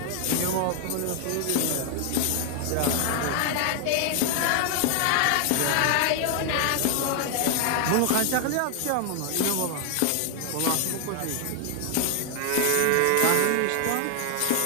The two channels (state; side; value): different; both; correlation 0.00